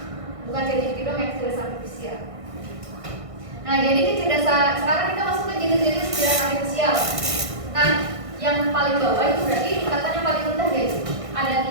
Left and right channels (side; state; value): left; late; 1.6 ms